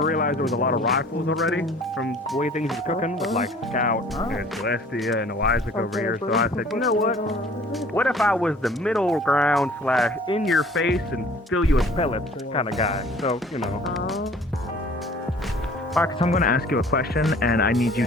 realized there was a lot of rifles already from the way things were cooking with like Scout and Celestia and Isaac over here. So I said, you know what? What if I was the middle ground / in your face and fill you with pellets kind of guy? So, you know. Marcus, I'm going to ask you a question, and I need you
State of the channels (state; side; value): normal; both; correlation 0.51